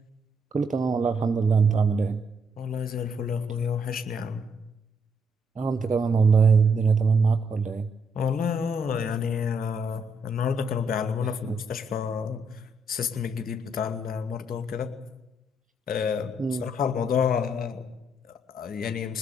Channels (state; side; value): normal; both; correlation 0.74